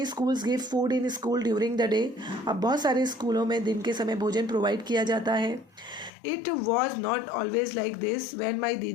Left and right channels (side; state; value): right; drops out; at 6.1 s